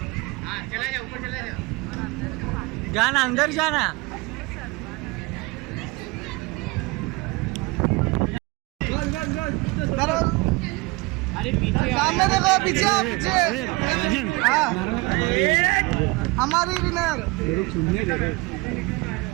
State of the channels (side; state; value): left; quieter; 24.3 dB